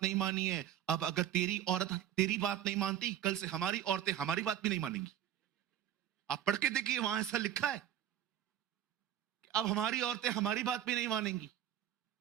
नहीं मानी है, अब अगर तेरी औरत तेरी बात नहीं मानती, कल से हमारी औरतें हमारी बात भी नहीं मानेंगी। आप पढ़ के देखिए, वहां ऐसा लिखा है कि अब हमारी औरतें हमारी बात भी नहीं मानेंगी।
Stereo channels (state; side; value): quieter; left; 10.9 dB